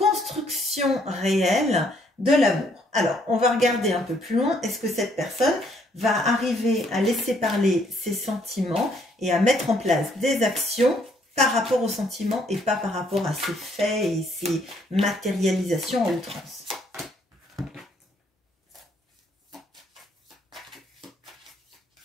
réelle de l'amour. Alors, on va regarder un peu plus loin. Est-ce que cette personne va arriver à laisser parler ses sentiments et à mettre en place des actions par rapport aux sentiments et pas par rapport à ses faits et ses matérialisations en outrance?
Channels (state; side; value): normal; both; correlation 0.67